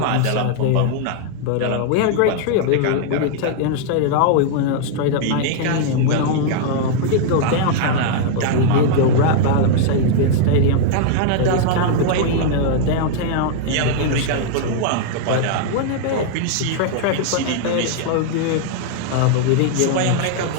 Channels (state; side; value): different; both; correlation -0.01